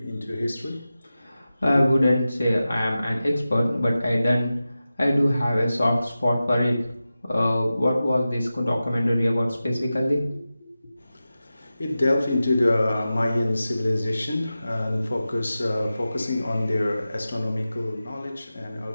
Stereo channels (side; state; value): both; inverted; correlation -0.94